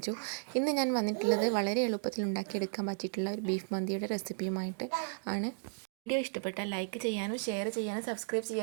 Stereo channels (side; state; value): left; silent; digital silence